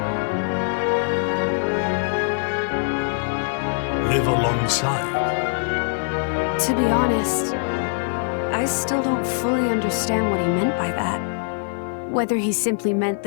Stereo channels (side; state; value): right; silent; digital silence